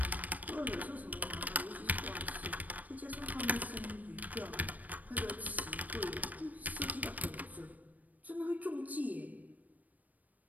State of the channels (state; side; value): late; left; 0.078 ms